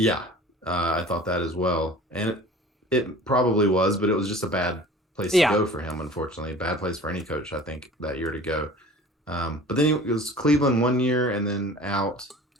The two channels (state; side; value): normal; both; correlation 0.43